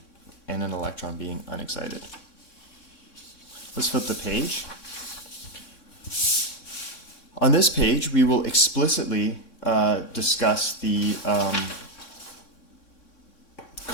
and an electron being unexcited. Let's flip the page. On this page, we will explicitly discuss the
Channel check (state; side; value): late; right; 3.6 ms